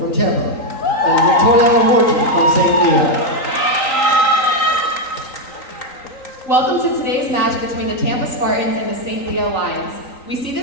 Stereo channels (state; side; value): late; right; 3.9 ms